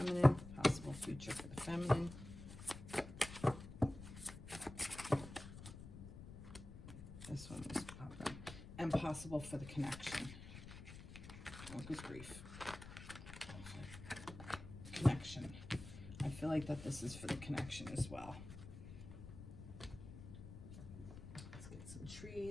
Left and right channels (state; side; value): noise; left; rumble, 12 dB below the sound